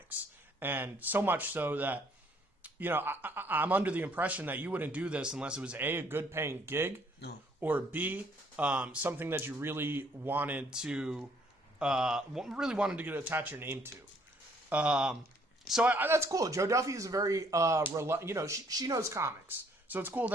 and so much so that I'm under the impression that you wouldn't do this unless it was a good paying gig, or B, something that you really wanted to get attach your name to. So that's cool. Joe Duffy is a very she knows comics, so it's cool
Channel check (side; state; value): both; normal; correlation 0.64